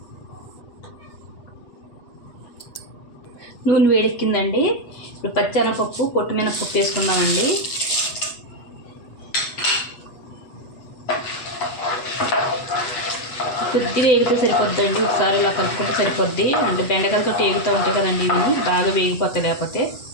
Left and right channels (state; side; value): late; right; 8.1 ms